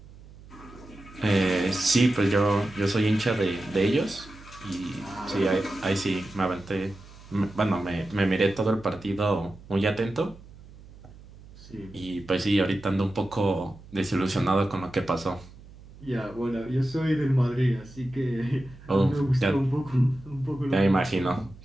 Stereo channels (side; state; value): right; noise; hum, 20 dB below the sound